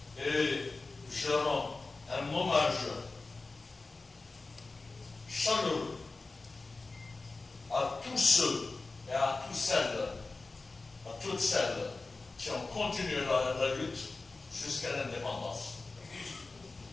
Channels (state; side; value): quieter; right; 3.6 dB